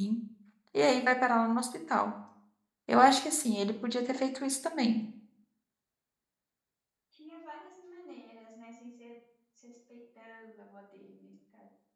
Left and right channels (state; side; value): identical; both; correlation 1.00